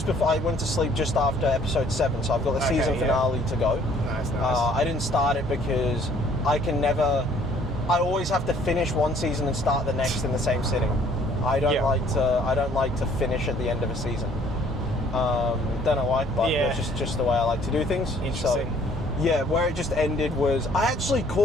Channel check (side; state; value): both; normal; correlation 0.59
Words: before I went to sleep just after episode 7, so I've got the season finale to go. Nice. I didn't start it because I always have to finish one season and start the next in the same sitting. I don't like to finish at the end of a season. Don't know why, but it's just the way I like to do things. Interesting. So, yeah, where it just ended was I actually